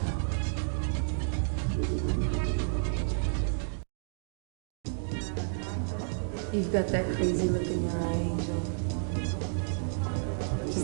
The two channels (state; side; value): silent; left; digital silence